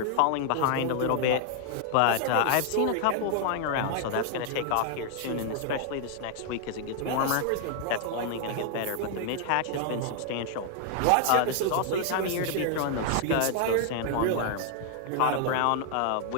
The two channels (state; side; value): different; both; correlation 0.00